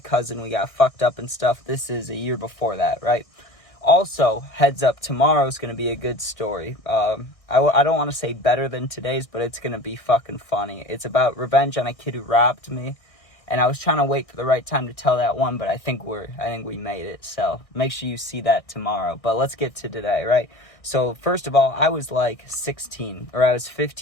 we got fucked up and stuff. This is a year before that, right? Also, heads up, tomorrow's going to be a good story. I don't want to say better than today's, but it's going to be fucking funny. It's about revenge on a kid who robbed me. And I was trying to wait for the right time to tell that one, but I think we made it. So make sure you see that tomorrow. But let's get to today, right? So first of all, I was like 16, or I was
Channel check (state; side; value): late; right; 1.6 ms